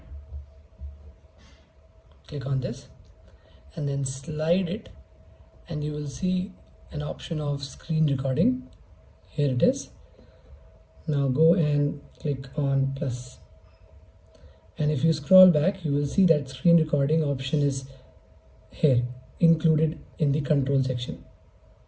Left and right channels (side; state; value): both; identical; correlation 1.00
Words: click on this and then slide it and you will see an option of screen recording. Here it is. Now go and click on plus. And if you scroll back, you will see that screen recording option is here, included in the control section.